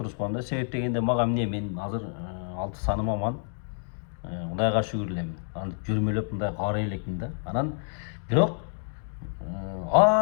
коем да. Себеп дегенде мага эмне, мен азыр 6 саным аман, Кудайга шүгүр элем. Антип жүрмөлөп мындай карай элекмин да. Анан бирок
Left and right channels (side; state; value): right; silent; 59 dB below the other